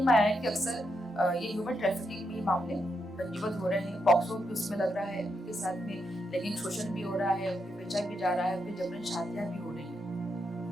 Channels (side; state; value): both; normal; correlation 0.82